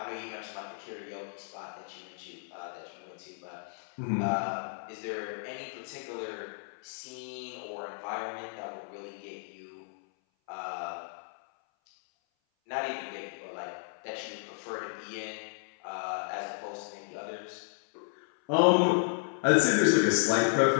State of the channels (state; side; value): silent; right; 56 dB below the other